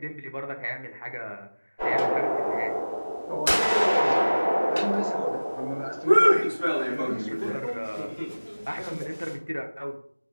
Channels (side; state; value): both; inverted; correlation -1.00